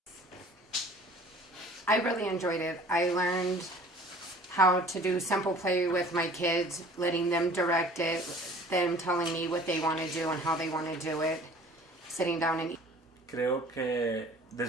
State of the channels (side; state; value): both; normal; correlation 0.49